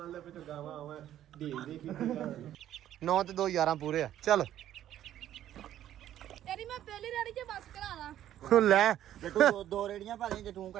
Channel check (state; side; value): quieter; left; 11.9 dB